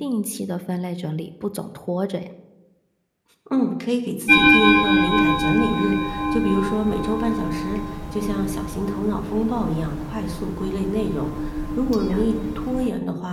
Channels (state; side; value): identical; both; correlation 1.00